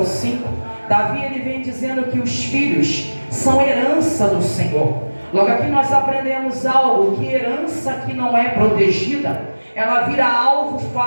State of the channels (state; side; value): inverted; both; correlation -1.00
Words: 5, Davi ele vem dizendo que os filhos são herança do Senhor. Logo aqui nós aprendemos algo, que herança que não é protegida, ela vira alvo